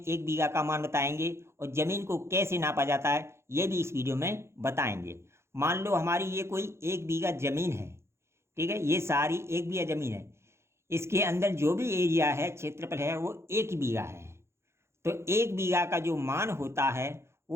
बीघा का मान बताएंगे और ज़मीन को कैसे नापा जाता है ये भी इस वीडियो में बताएंगे। मान लो हमारी ये कोई एक बीघा ज़मीन है, ठीक है, ये सारी एक बीघा ज़मीन है। इसके अंदर जो भी एरिया है, क्षेत्रफल है, वो एक बीघा है। तो एक बीघा का जो मान होता है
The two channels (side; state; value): left; late; 0.13 ms